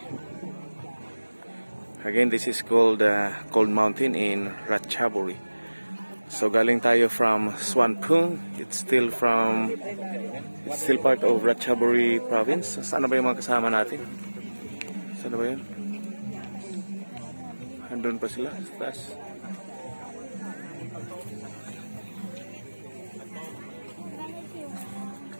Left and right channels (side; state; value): both; inverted; correlation -1.00